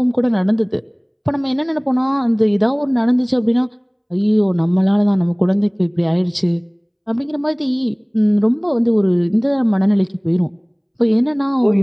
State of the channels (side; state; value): both; identical; correlation 1.00